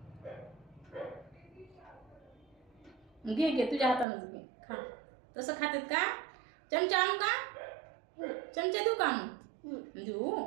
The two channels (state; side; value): drops out; left; at 4.0 s